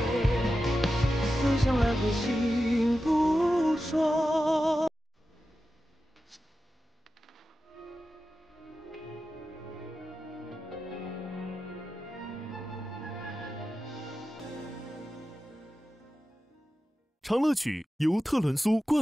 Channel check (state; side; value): normal; both; correlation 0.92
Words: 心不说。长乐曲由特仑苏